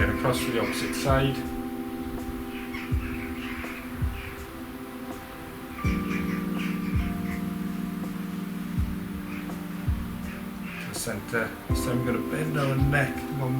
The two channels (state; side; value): identical; both; correlation 1.00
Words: across to the opposite side. To the centre. This time we're going to bend our neck